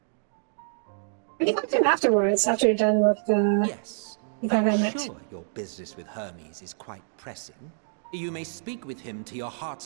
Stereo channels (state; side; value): silent; left; digital silence